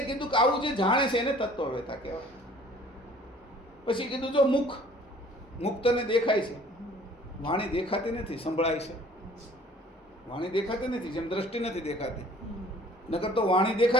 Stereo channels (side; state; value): both; normal; correlation 0.52